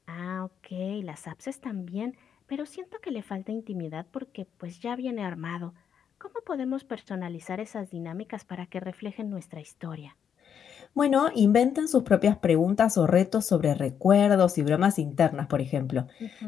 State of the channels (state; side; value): quieter; right; 8.0 dB